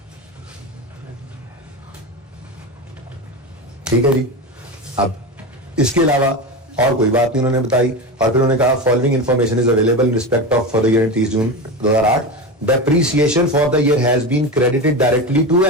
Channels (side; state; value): both; normal; correlation 0.21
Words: ठीक है जी। अब इसके अलावा और कोई बात नहीं उन्होंने बताई, और फिर उन्होंने कहा following information is available in respect of for the year 30 June 2008, depreciation for the year has been credited directly to